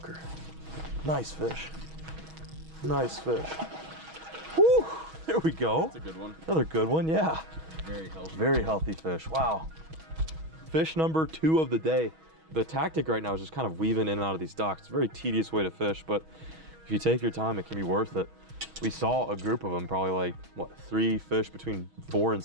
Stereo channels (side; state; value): left; late; 6.2 ms